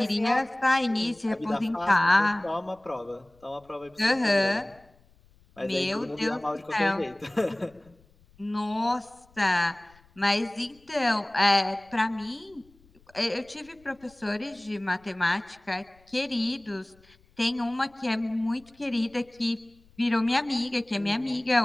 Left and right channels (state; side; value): noise; left; rumble, 30 dB below the sound